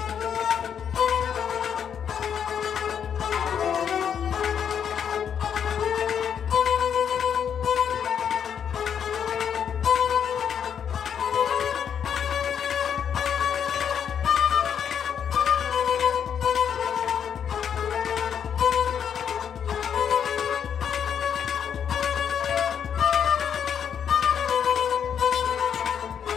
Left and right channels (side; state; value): right; quieter; 8.1 dB